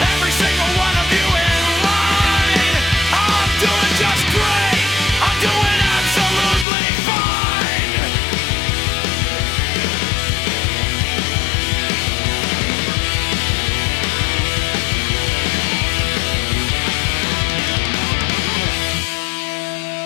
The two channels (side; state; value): right; drops out; at 6.7 s